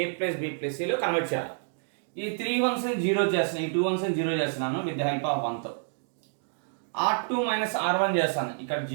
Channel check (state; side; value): silent; left; digital silence